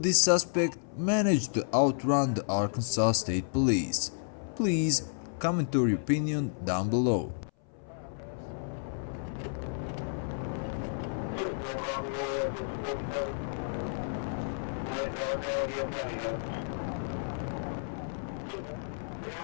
suspect manage to outrun the Arkansas State Police? Please comment your opinion down below.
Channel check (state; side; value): silent; right; 57 dB below the other